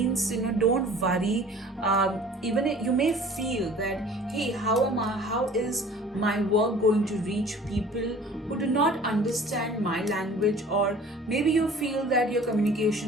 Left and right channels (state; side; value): normal; both; correlation 0.47